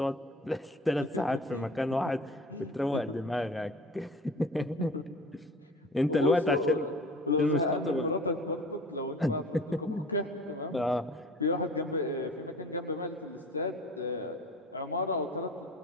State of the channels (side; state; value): both; normal; correlation 0.43